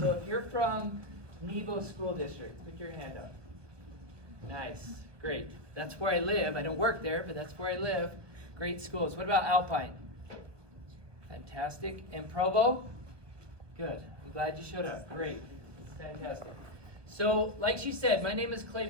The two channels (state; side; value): late; left; 1.1 ms